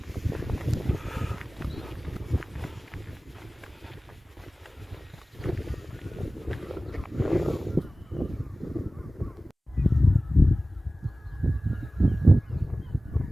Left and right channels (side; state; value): both; normal; correlation 0.96